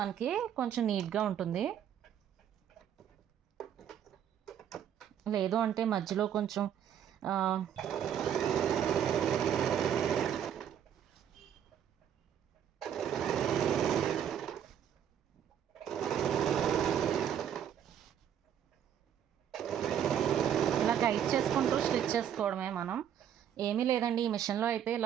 మనకి కొంచెం నీట్గా ఉంటుంది. లేదు అంటే మధ్యలో కొంచెం టైట్ చేసుకుంటూ స్టిచ్ చేసుకోవడమే. మనం ఏమీ లేదండి, ఈ మిషన్లో అయితే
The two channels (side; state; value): left; quieter; 9.4 dB